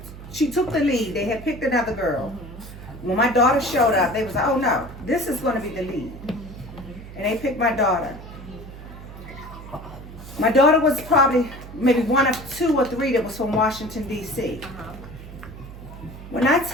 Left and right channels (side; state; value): right; noise; hum, 14 dB below the sound